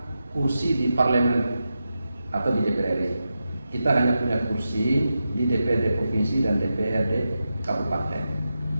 kursi di parlemen atau di DPR RI. Kita hanya punya kursi di DPRD provinsi dan DPRD kabupaten.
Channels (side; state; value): both; inverted; correlation -0.89